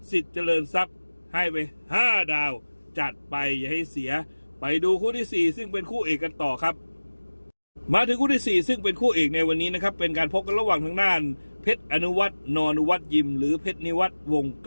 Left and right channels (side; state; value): both; inverted; correlation -1.00